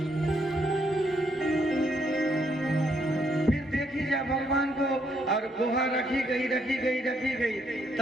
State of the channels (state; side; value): normal; both; correlation 0.73